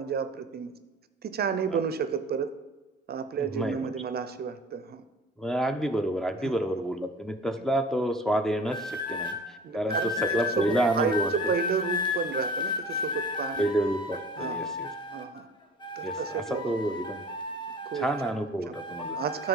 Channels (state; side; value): normal; both; correlation 0.42